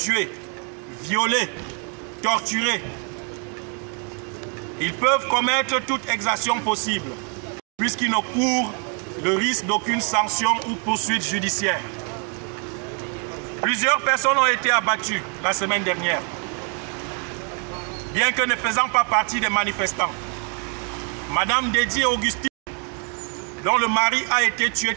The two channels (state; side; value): quieter; left; 39.1 dB